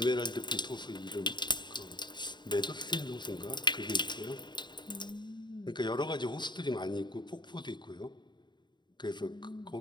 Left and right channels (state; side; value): late; right; 0.22 ms